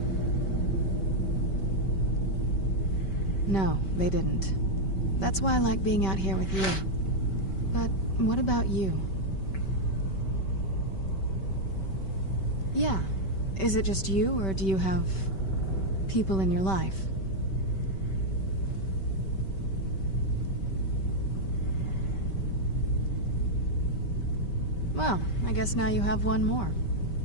No, they didn't. That's why I like being out here with you. But what about you? Yeah. Is it just you, or do you have people in your life? Well, I guess now you have one more.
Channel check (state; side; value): late; right; 5.2 ms